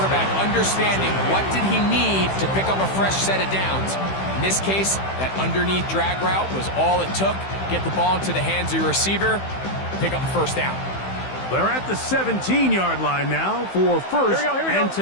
understanding what did he need to pick up a fresh set of downs. In this case, that underneath drag route was all it took. Get the ball into the hands of your receiver, pick up a first down. They're at the 17-yard line now for first and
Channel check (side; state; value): right; late; 15 ms